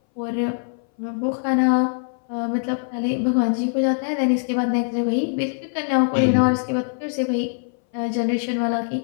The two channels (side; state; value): right; silent; 60 dB below the other